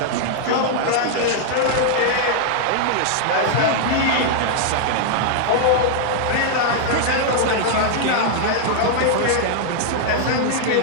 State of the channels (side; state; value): both; different; correlation -0.01